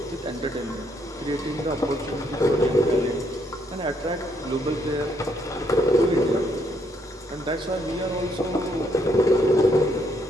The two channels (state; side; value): normal; both; correlation 0.72